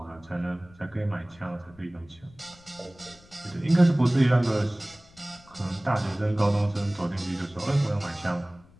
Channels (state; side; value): noise; left; rumble, 26 dB below the sound